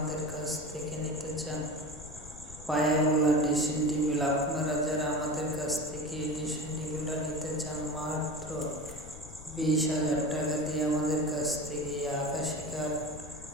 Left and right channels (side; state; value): left; noise; rumble, 15 dB below the sound